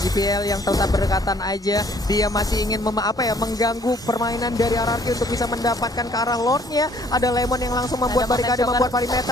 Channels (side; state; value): both; normal; correlation 0.60